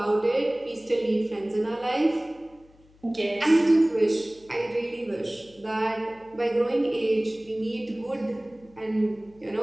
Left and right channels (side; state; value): left; noise; hum, 28 dB below the sound